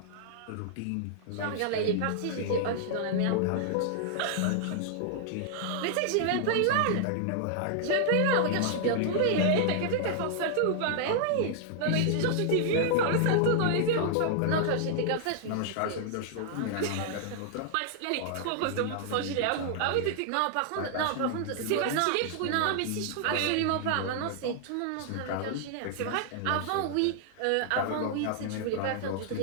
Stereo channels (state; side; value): different; both; correlation -0.01